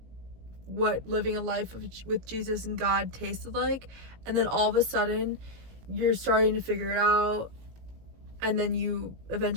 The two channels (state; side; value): late; left; 18 ms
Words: what living a life with Jesus and God tasted like, and then all of a sudden you're starting to figure it out, and then you